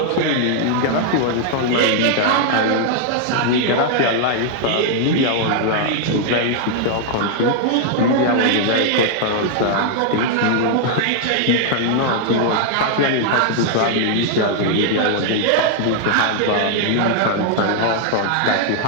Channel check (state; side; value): different; both; correlation 0.00